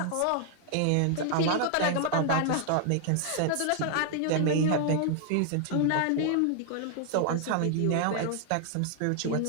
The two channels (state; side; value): different; both; correlation 0.00